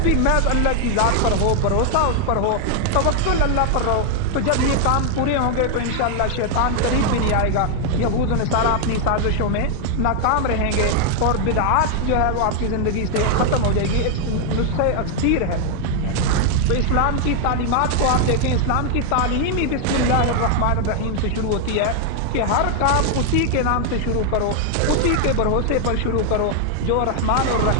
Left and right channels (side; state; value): both; different; correlation 0.00